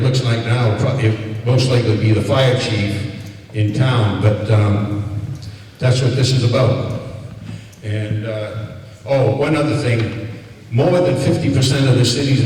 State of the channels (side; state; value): both; identical; correlation 1.00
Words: looks like now it most likely be the fire chief in town, but that's what this is about. And, one other thing, more than 50% of the cities